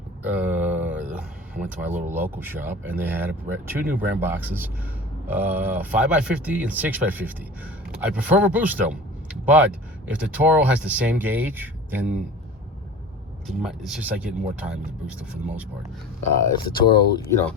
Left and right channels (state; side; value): normal; both; correlation 0.37